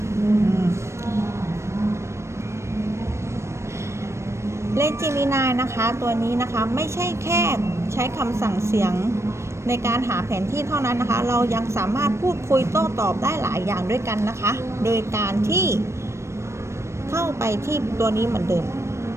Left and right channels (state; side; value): late; left; 0.13 ms